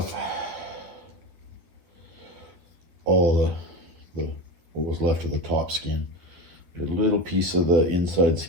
all the what was left of the top skin. A little piece of the inside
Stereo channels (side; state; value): left; late; 12 ms